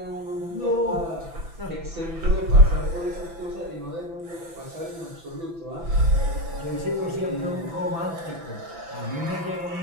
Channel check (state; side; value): late; left; 6.0 ms